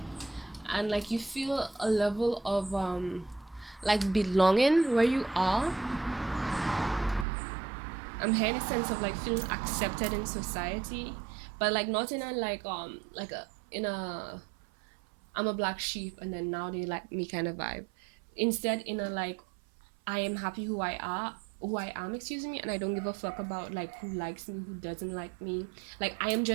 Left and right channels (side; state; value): left; drops out; at 7.2 s